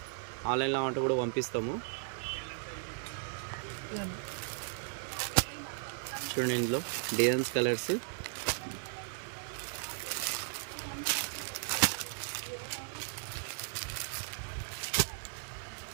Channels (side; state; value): left; silent; digital silence